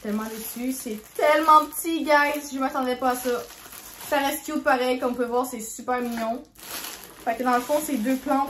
déçue. C'est tellement petit, guys. Je m'attendais pas à ça. Ça reste cute pareil. Comme vous pouvez voir, c'est super mignon. Fait que dans le fond, c'est 2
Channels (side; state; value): both; identical; correlation 1.00